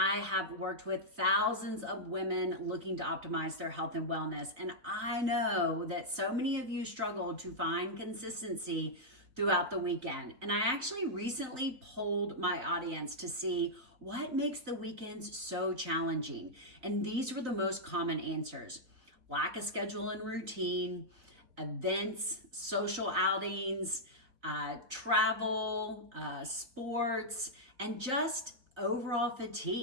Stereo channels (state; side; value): late; left; 3.9 ms